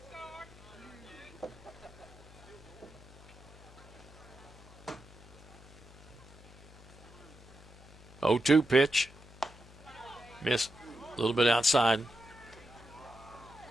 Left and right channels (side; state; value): left; noise; hum, 21 dB below the sound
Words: Oh, 2 pitch. Missed a little bit outside.